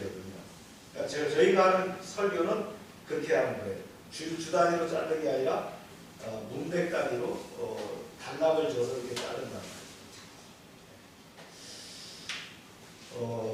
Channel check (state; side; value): identical; both; correlation 1.00